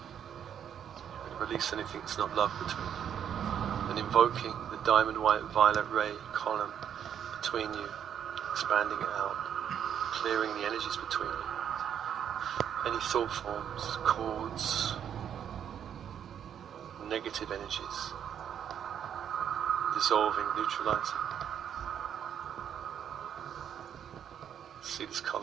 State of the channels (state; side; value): quieter; left; 8.9 dB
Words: release anything that's not love between you. And invoking the diamond white violet ray column between you, expanding it out, clearing the energies between you. Any thought forms, cords, negative energies, dissolving, neutralizing. See this